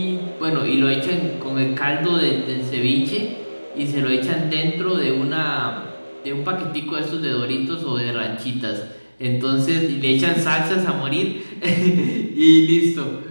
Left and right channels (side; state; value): both; inverted; correlation -1.00